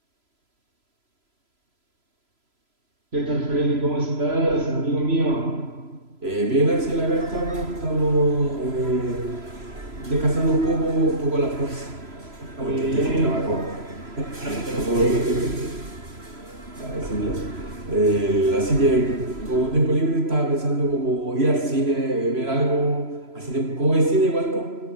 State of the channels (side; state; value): left; late; 3.0 ms